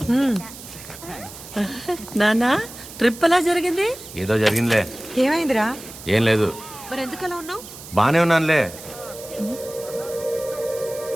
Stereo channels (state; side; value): noise; right; hiss, 15 dB below the sound